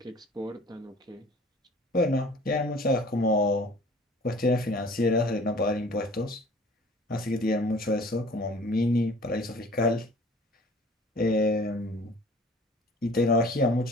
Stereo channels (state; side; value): normal; both; correlation 0.49